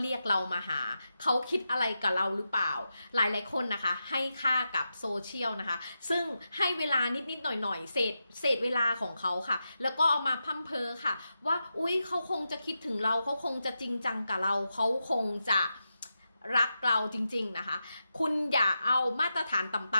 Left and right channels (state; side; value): inverted; both; correlation -0.89